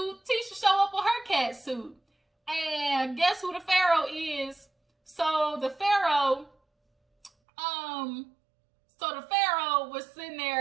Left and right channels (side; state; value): left; drops out; at 7.3 s